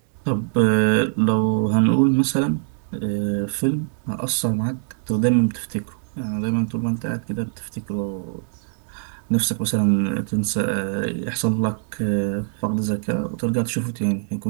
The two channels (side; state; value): left; silent; 64 dB below the other